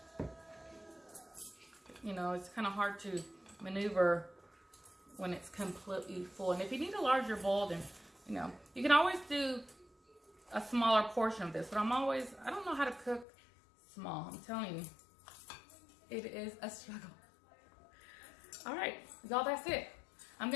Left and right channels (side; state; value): right; drops out; at 13.2 s